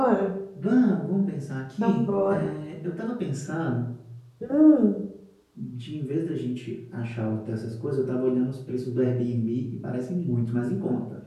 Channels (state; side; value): identical; both; correlation 1.00